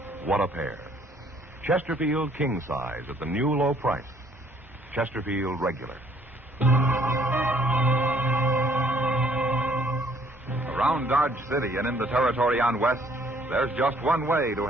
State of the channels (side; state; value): both; normal; correlation 0.62